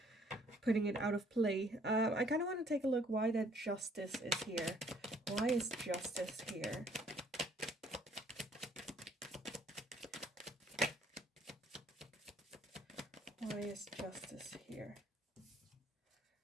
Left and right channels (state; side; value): normal; both; correlation 0.62